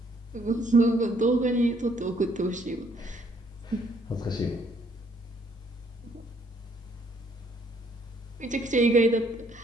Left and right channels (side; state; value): both; normal; correlation 0.66